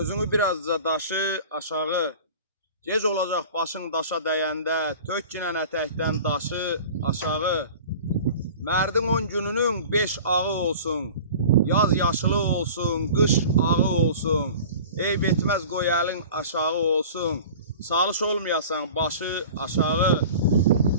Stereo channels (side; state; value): both; inverted; correlation -0.40